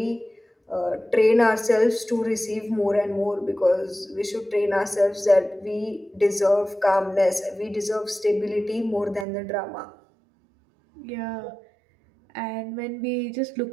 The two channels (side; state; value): left; drops out; at 9.2 s